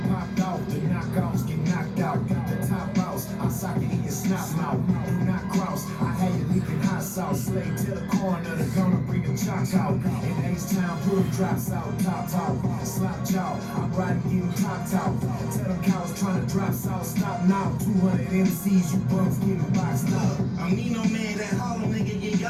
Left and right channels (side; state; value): both; identical; correlation 1.00